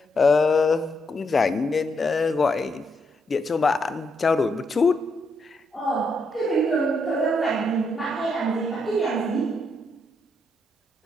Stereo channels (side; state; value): both; normal; correlation 0.78